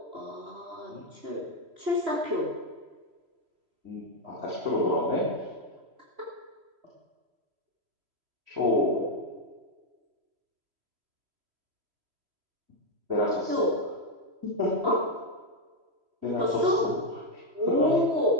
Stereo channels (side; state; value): left; late; 3.1 ms